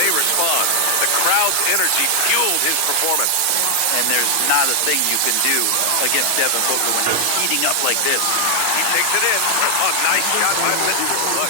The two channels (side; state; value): both; different; correlation 0.00